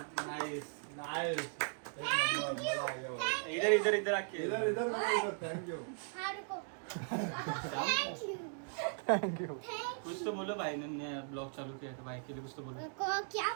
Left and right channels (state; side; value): silent; left; 52 dB below the other